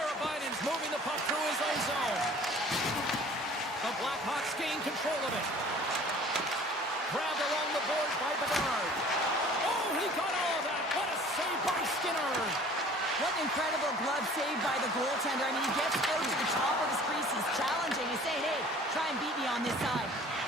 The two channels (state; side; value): normal; both; correlation 0.49